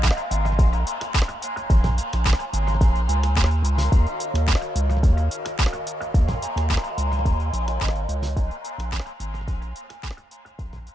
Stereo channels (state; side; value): normal; both; correlation 0.88